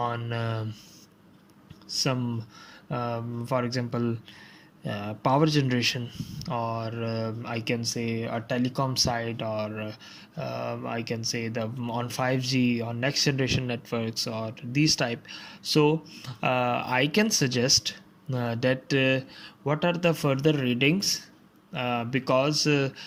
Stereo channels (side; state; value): both; identical; correlation 1.00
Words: some for example, power generation, or I can say a telecom side, or I can say the on 5G or next generation networks, or these type. So I can suggest that what are the further readings, because